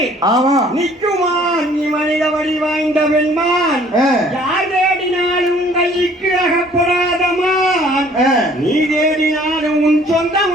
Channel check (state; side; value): normal; both; correlation 0.56